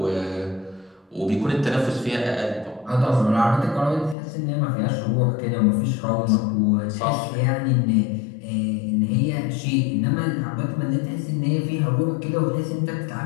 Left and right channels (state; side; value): drops out; right; at 4.2 s